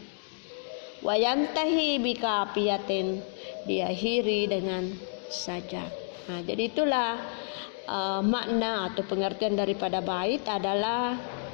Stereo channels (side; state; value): right; silent; digital silence